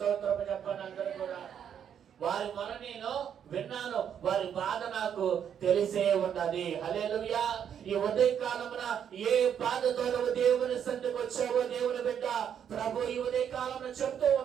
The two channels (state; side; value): quieter; left; 8.6 dB